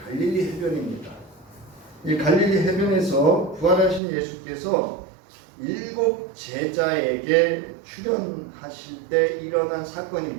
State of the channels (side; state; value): left; drops out; at 4.0 s